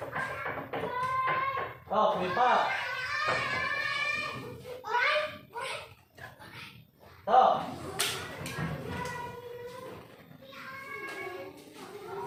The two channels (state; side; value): identical; both; correlation 1.00